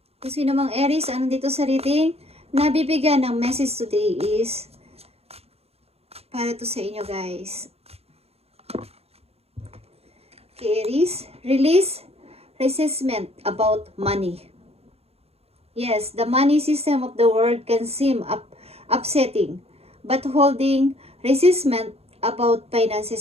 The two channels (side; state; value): left; late; 0.29 ms